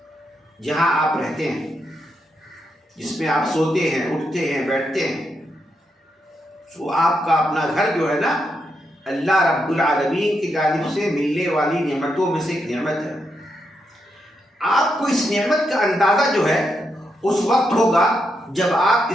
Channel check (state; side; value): normal; both; correlation 0.82